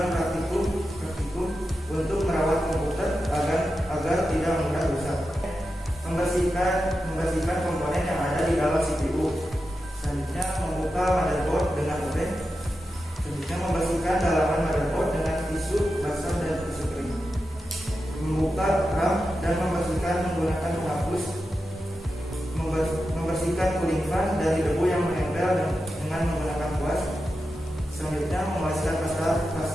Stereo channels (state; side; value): normal; both; correlation 0.90